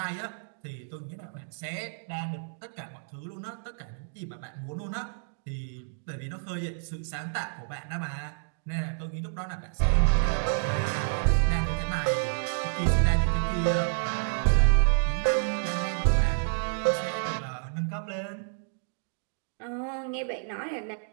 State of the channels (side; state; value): left; silent; digital silence